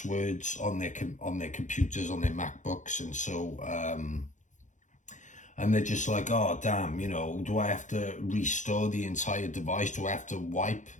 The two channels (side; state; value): right; late; 0.36 ms